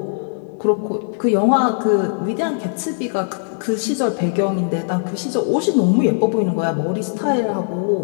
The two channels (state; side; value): silent; right; digital silence